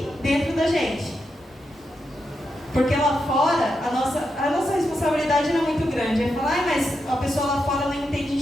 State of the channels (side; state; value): both; normal; correlation 0.85